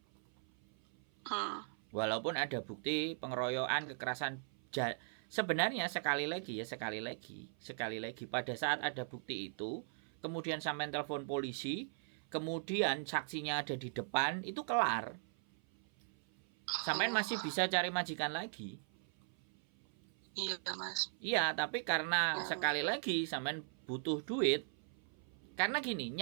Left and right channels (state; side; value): silent; left; 52 dB below the other